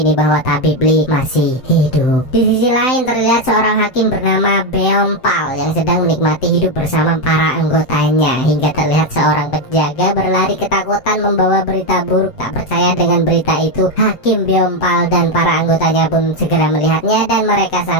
bahwa tabib Li masih hidup. Di sisi lain terlihat seorang hakim bernama Beom Pal yang sedang menikmati hidup bersama para anggotanya, hingga terlihat seorang penjaga berlari ketakutan membawa berita buruk. Tak percaya dengan berita itu, Hakim Beom Pal dan para anggotanya pun segera melihatnya dan mereka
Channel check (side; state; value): right; late; 7.8 ms